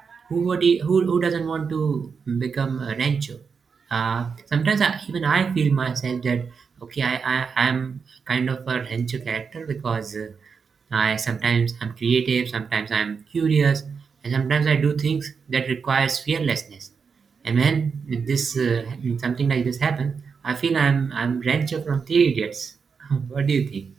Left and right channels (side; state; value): left; quieter; 5.7 dB